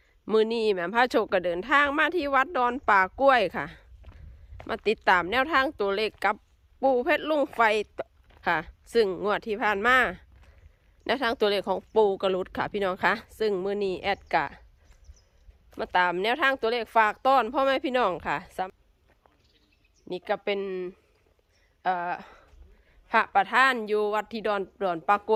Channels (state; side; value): identical; both; correlation 1.00